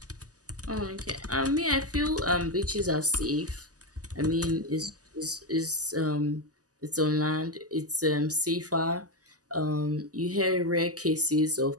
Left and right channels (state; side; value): late; left; 0.67 ms